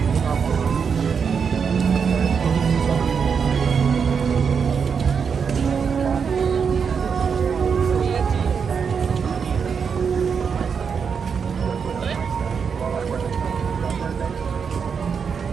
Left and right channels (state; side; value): quieter; left; 6.3 dB